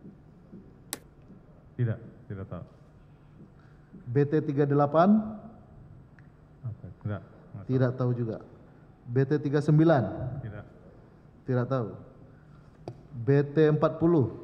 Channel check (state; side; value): identical; both; correlation 1.00